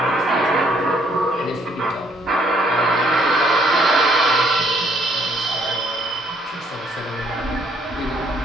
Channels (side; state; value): both; normal; correlation 0.66